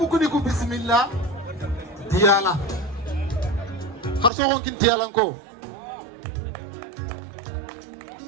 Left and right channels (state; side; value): drops out; left; at 4.3 s